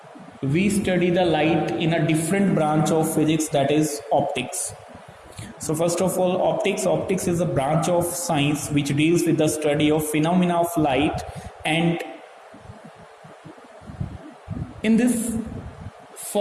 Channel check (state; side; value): identical; both; correlation 1.00